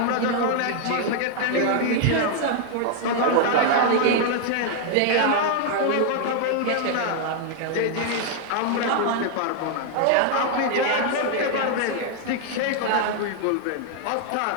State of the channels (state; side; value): different; both; correlation 0.00